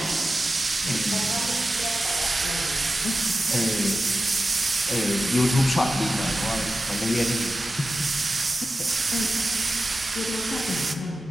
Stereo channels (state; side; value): normal; both; correlation 0.93